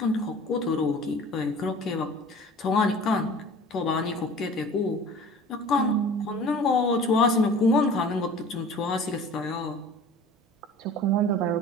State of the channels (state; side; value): normal; both; correlation 0.44